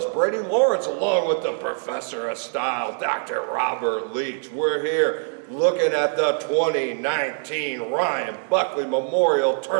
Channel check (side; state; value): left; silent; digital silence